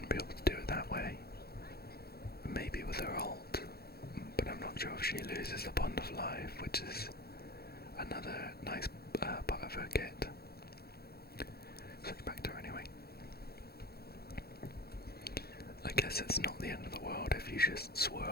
be able to do it that way. Maybe with her ult, but I'm not sure if she loses the Bond of Life, which is another nice part of her kit. Switch back to her anyway. I guess it's not the end of the world if you just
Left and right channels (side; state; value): right; late; 0.46 ms